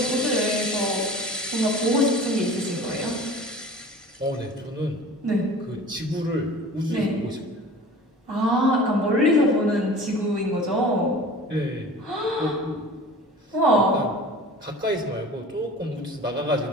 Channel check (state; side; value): normal; both; correlation 0.41